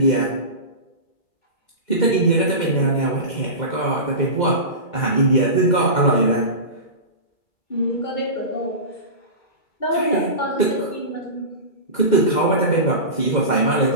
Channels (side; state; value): right; late; 2.2 ms